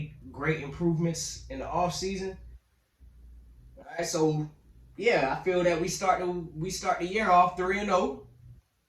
great improvements in the offseason. All right, so yeah, I feel that we start the year off 3-0.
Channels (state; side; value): identical; both; correlation 1.00